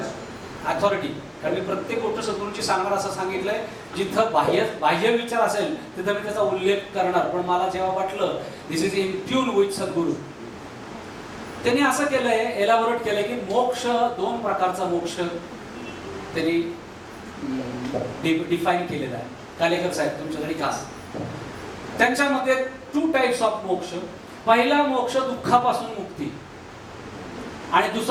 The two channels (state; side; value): identical; both; correlation 1.00